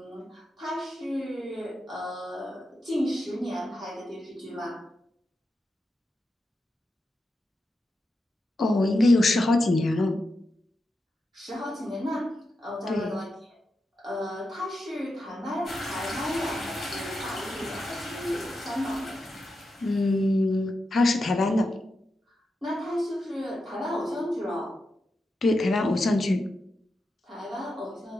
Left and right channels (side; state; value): both; normal; correlation 0.88